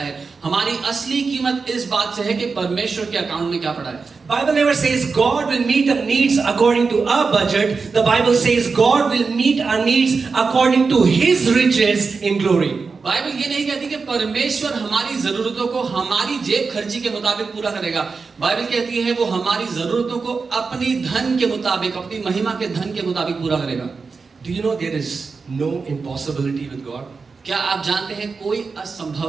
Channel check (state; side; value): quieter; left; 4.7 dB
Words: हमारी असली कीमत इस बात से है कि परमेश्वर के अकाउंट में क्या पड़ा है। Bible never says God will meet our needs according to our budget. The Bible says God will meet our needs according to His riches in glory. Bible ये नहीं कहती कि परमेश्वर हमारी जरूरतों को हमारी जेब खर्ची के मुताबिक पूरा करेगा। बाइबल कहती है वो हमारी जरूरतों को अपनी धन के मुताबिक, अपनी महिमा के धन के मुताबिक पूरा करेगा। Do you know there is no impossibility with God? क्या आप जानते हैं कोई